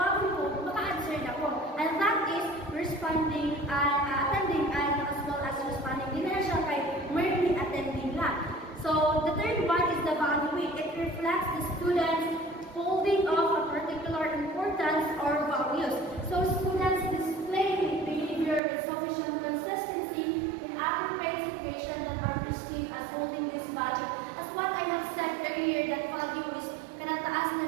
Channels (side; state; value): left; drops out; at 18.6 s